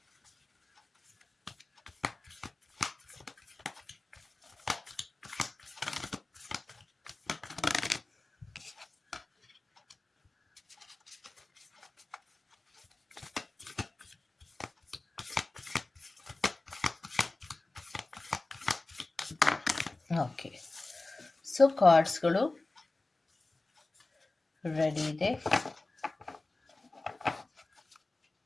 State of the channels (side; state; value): right; quieter; 3.1 dB